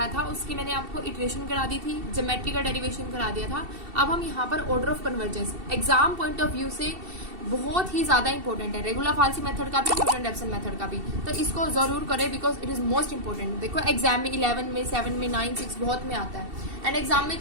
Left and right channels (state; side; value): late; left; 2.7 ms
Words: था, उसकी मैंने आपको इटरेशन करा दी थी, ज्योमेट्री का डेरिवेशन करा दिया था। अब हम यहाँ पर order of convergence exam point of view से बहुत ही ज्यादा इंपॉर्टेंट है, रेगुलर फाल्सी मेथड का भी, न्यूटन रेफसन मेथड का भी। तो इसको जरूर करें because it is most important. देखो एग्जाम में 11 में 7 में 9 6 बहुत में आता है एंड एग्जाम में